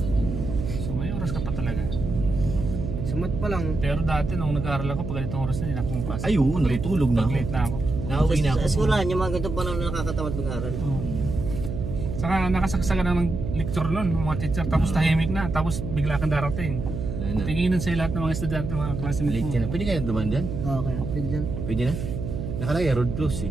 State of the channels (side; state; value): right; noise; hum, 5 dB below the sound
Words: So may oras ka pa talaga. Sa mat pa lang. Pero dati nung nag-aaral ako, pag ganitong oras na, hindi na ako pumapasok. Ay, oo, natutulog na ako. Pag-late na ako. Nauwi na ako. Sa eskwelahan, yung mga ganitong panahon na nakakatamad mag-aral. Saka nakasaksagan na ng lecture nun, ng mga teacher, tapos tahimik na, tapos bigla kang darating. Wala na. Tinginan sa lahat ng mga estudyante, mga classmates Late mo. ka na. Pwede kaya duman dyan? Okay, pwede dyan. Pwede na? Nakalagay, road close